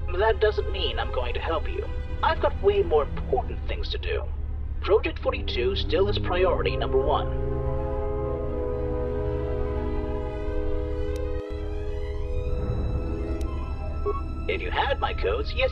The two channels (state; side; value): identical; both; correlation 1.00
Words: That doesn't mean I'm going to help you. I've got way more important things to do. Project 42 still is priority number 1. If you had my codes,